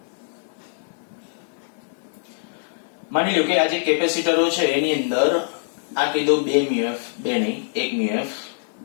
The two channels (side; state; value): right; silent; 63 dB below the other